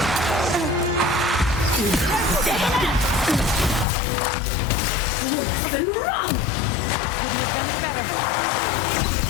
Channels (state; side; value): drops out; right; at 3.9 s